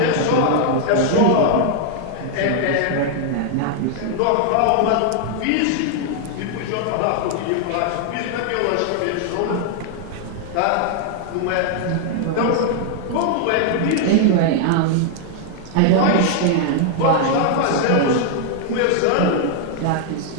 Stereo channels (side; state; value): both; different; correlation 0.00